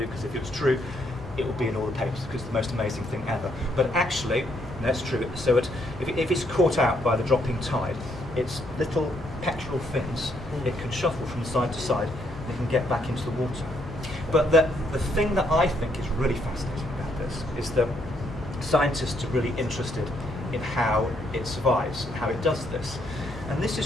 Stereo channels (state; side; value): normal; both; correlation 0.73